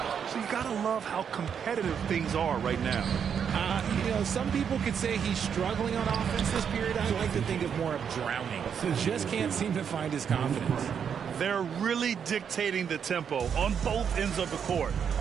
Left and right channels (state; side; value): quieter; left; 7.5 dB